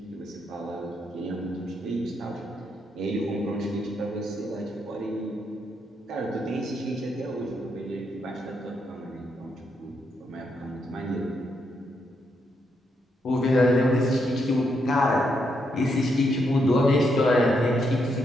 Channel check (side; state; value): both; normal; correlation 0.79